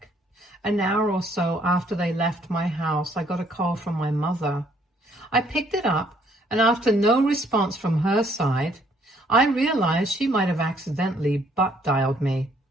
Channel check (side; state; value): both; normal; correlation 0.65